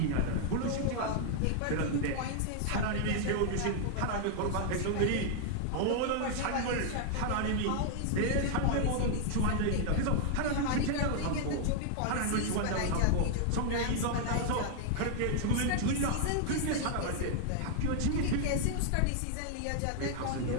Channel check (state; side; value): different; both; correlation 0.00